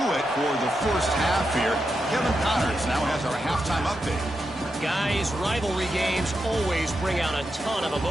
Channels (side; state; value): both; normal; correlation 0.86